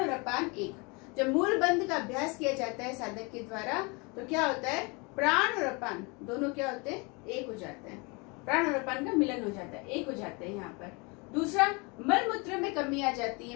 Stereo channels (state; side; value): quieter; right; 29.1 dB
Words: अपान एक। जब मूल बंध का अभ्यास किया जाता है साधक के द्वारा तो क्या होता है? प्राण और अपान दोनों क्या होते हैं? एक हो जाते हैं। प्राण और अपान का मिलन हो जाता है, एक हो जाते हैं यहाँ पर। दूसरा, मल मूत्र में कमी आ जाती